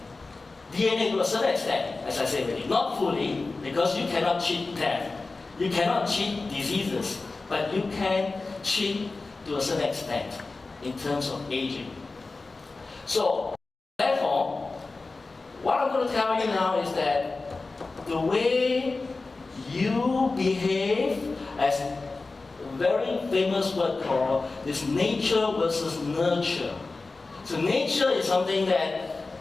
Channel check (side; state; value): right; quieter; 3.6 dB